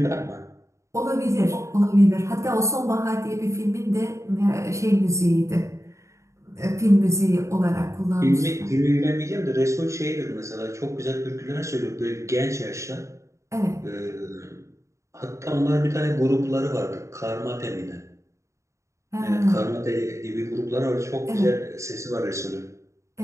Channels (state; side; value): late; left; 0.14 ms